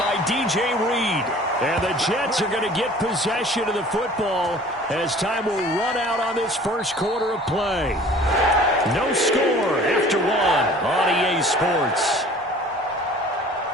DJ Reed. And the Jets are going to get possession of the football as time will run out on this first quarter of play. No score after 1 on EA Sports.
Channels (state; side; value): normal; both; correlation 0.48